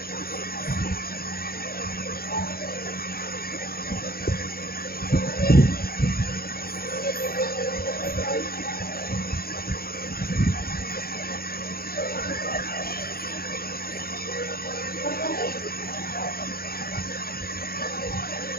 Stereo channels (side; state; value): right; late; 0.44 ms